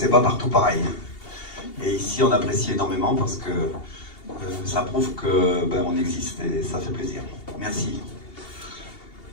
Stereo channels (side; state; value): right; late; 2.8 ms